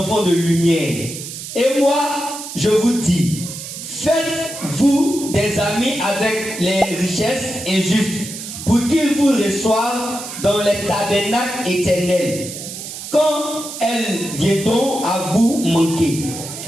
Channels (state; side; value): noise; right; hiss, 9 dB below the sound